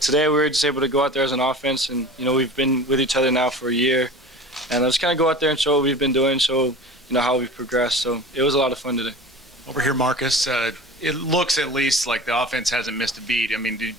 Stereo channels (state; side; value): normal; both; correlation 0.37